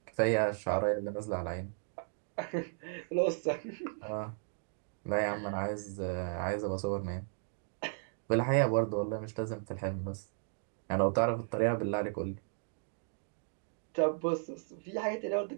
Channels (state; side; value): silent; left; digital silence